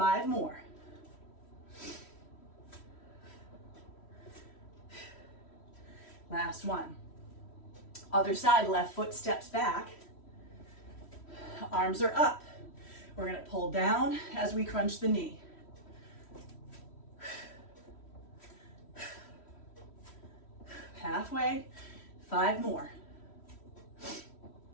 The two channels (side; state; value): right; late; 3.1 ms